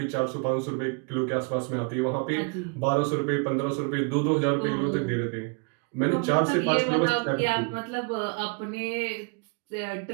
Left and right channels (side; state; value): left; quieter; 34.4 dB